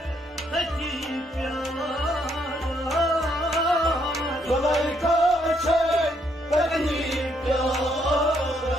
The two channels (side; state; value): both; normal; correlation 0.72